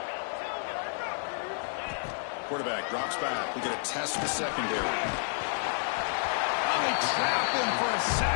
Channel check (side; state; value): right; silent; digital silence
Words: Quarterback drops back. We get a test the secondary. They trap him for a